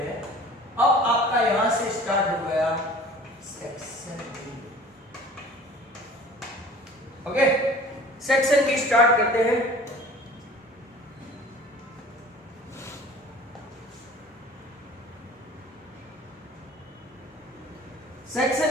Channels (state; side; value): normal; both; correlation 0.45